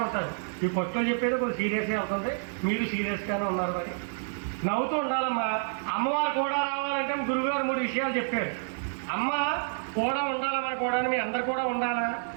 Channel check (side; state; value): left; silent; 59 dB below the other